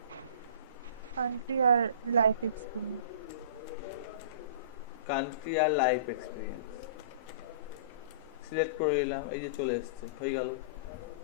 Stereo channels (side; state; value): both; inverted; correlation -0.39